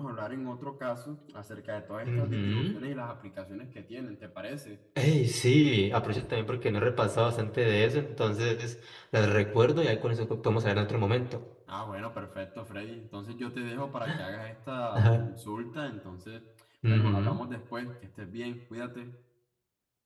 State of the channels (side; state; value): both; identical; correlation 1.00